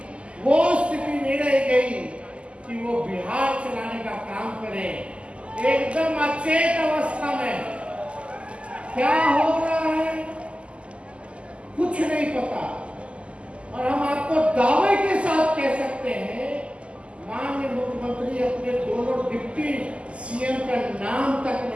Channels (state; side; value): late; left; 0.056 ms